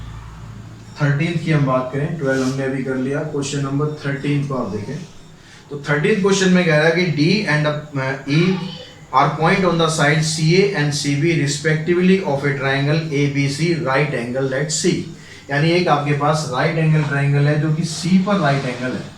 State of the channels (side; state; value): both; identical; correlation 1.00